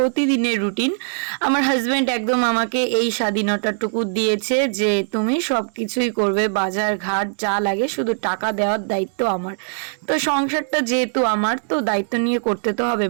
রুটিন। আমার হাজব্যান্ড একদম আমাকে এই স্বাধীনতাটুকু দিয়েছে যে তুমি সব কিছুই করবে, বাজার ঘাট যা লাগে, শুধু টাকা দেওয়ার দায়িত্ব আমার। তো সংসারটা যেহেতু আমার, তো দায়িত্ব নিয়ে করতে তো হবে।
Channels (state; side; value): silent; left; digital silence